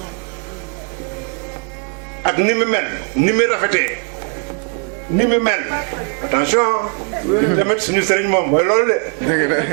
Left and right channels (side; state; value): left; quieter; 37.3 dB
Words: ak ni mu mel ni mu rafetee ni mu mel attention tamit suñu sëriñ moom mooy loolu